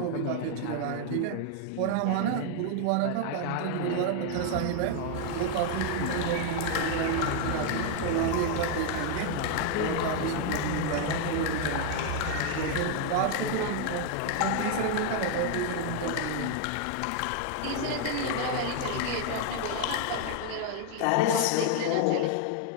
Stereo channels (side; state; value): both; different; correlation 0.00